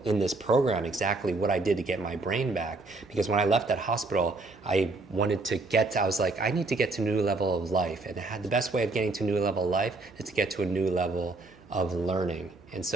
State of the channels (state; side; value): quieter; left; 3.3 dB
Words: in this program exactly what I did to get my brain back. Because when I left that hospital, I was like, I need to get to a new level of life. And the best way of getting to a new level of life is to get to a new level of learning. And